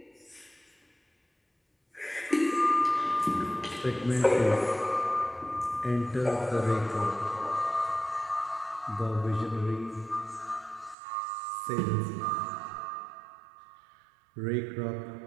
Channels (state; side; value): drops out; left; at 11.0 s